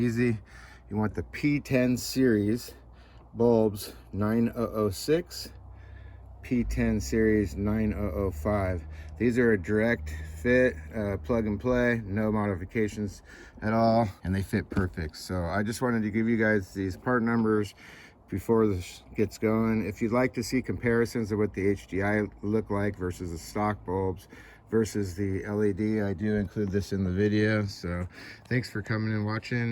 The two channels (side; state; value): both; identical; correlation 1.00